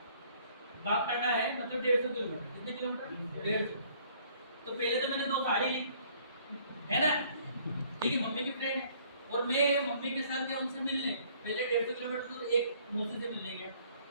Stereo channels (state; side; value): inverted; both; correlation -0.60